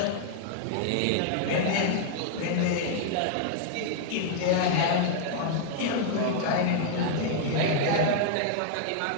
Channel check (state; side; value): different; both; correlation -0.01